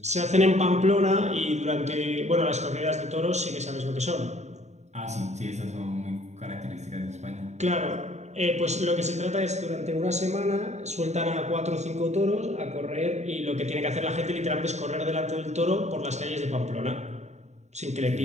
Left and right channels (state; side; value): late; left; 0.33 ms